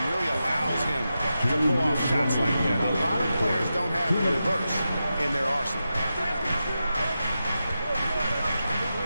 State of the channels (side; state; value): both; inverted; correlation -0.90